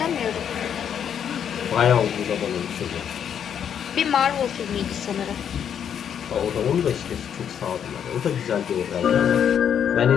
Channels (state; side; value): quieter; right; 8.5 dB